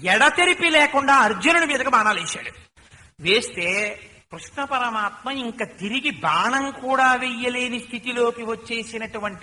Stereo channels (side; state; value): both; identical; correlation 1.00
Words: ఎడతెరిపి లేకుండా అర్జునుడి మీదకి బాణాలు వేశాడు. వేస్తే కృష్ణ పరమాత్మ ఇంకా తిరిగి బాణం కూడా వెయ్యలేని స్థితిలోకి